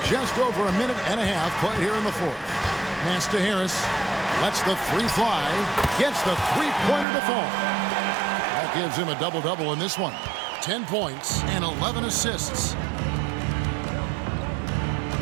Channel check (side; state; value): left; drops out; at 7.1 s